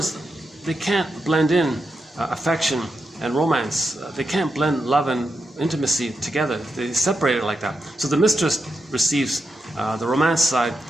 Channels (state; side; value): normal; both; correlation 0.87